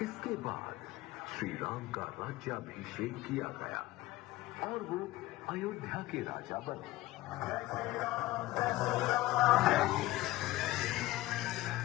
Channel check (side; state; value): right; quieter; 17.3 dB